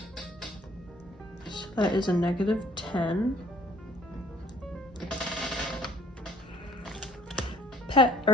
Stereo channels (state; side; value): normal; both; correlation 0.57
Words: So that is a negative 10.